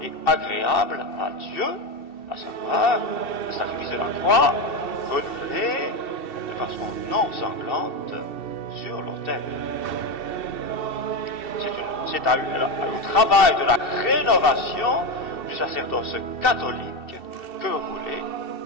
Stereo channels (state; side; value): late; right; 2.7 ms